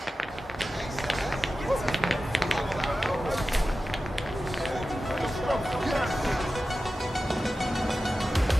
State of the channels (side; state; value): both; normal; correlation 0.94